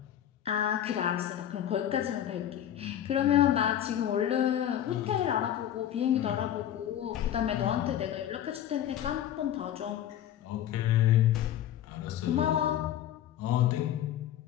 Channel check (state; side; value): quieter; right; 11.0 dB